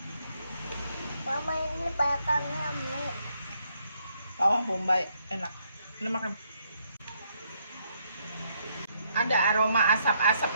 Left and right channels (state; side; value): inverted; both; correlation -0.73